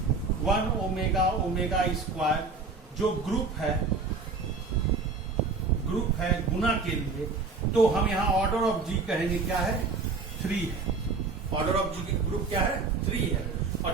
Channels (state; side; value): quieter; left; 4.3 dB